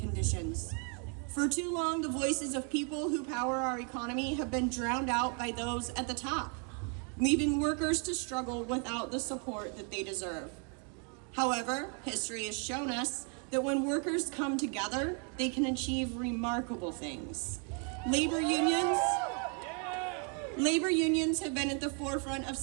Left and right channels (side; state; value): left; quieter; 39.0 dB